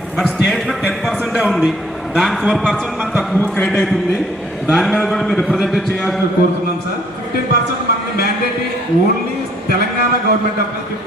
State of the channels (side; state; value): both; normal; correlation 0.62